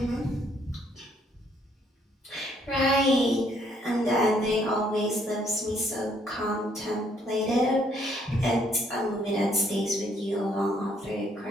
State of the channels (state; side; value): normal; both; correlation 0.68